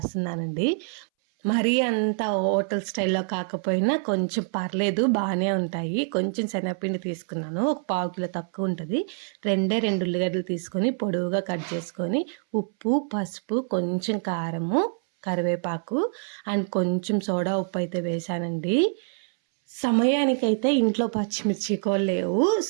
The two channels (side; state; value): left; silent; 61 dB below the other